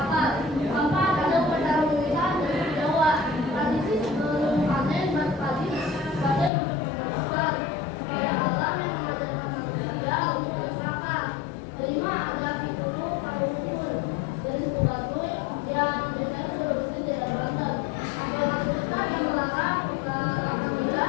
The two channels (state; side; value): drops out; right; at 6.5 s